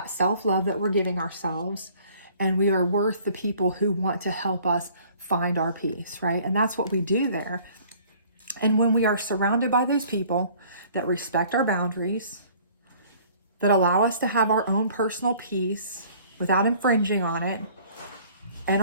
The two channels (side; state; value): both; inverted; correlation -0.54